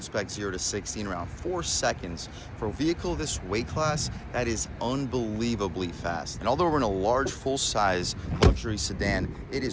0 to 60 in around 4 seconds. For a vehicle this weight class, that is unbelievably fast. And although we're in a large, full-size luxury sedan, it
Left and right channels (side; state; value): both; identical; correlation 1.00